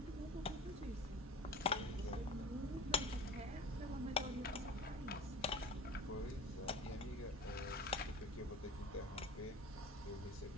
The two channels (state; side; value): normal; both; correlation 0.38